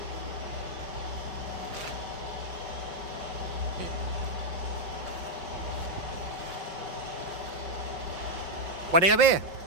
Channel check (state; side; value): late; left; 5.5 ms